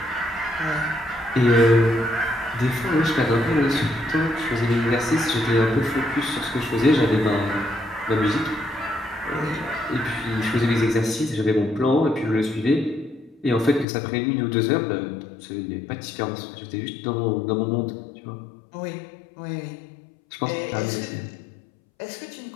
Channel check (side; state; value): right; drops out; at 13.9 s